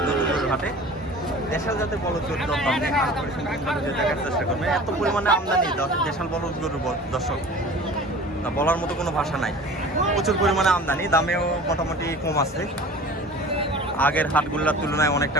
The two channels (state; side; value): normal; both; correlation 0.41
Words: হাটে। দেশাল জাতের বলদ গরুর দরদাম দেখার চেষ্টা করবেন। এত পরিমাণে আমদানি দেশাল বলদ গরুর দর্শক তা বলার মতো কোনো ভাষা নাই। প্রচুর পরিমাণে আমদানি, দামেও মোটামুটি কম আছে। আগের হাটগুলোর তুলনায় অনেকটা